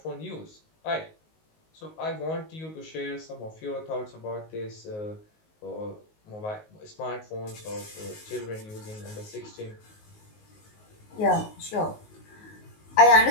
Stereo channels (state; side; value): late; right; 19 ms